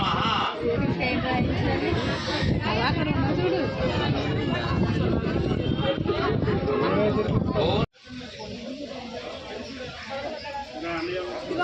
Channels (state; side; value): identical; both; correlation 1.00